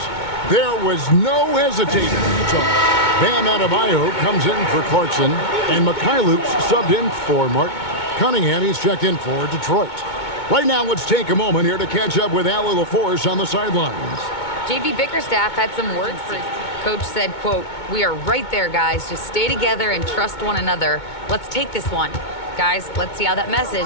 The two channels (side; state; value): right; late; 2.2 ms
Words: There was no hesitating. Bam Adebayo comes in for Clarkson, and Mikhailuk's subbed in for Mark Cunningham. He's checked in for Detroit. Right now, let's take a moment here to catch up with Allie LaForce on the sidelines. J.B. Bickerstaff had some words for his team. Coach said, quote, "We are right there, guys. Just stay together and trust one another. Let's take this one. Guys, let's see how that message